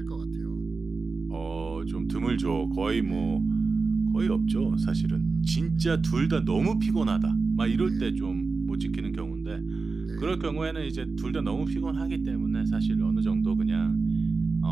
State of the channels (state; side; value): quieter; left; 4.2 dB